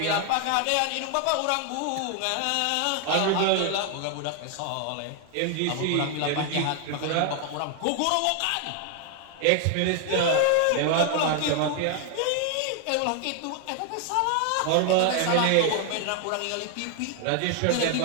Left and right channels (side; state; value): both; different; correlation 0.00